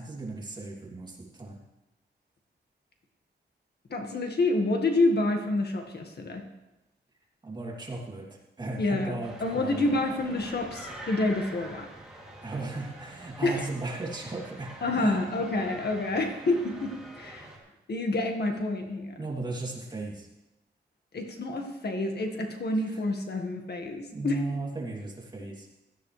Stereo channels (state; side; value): normal; both; correlation 0.64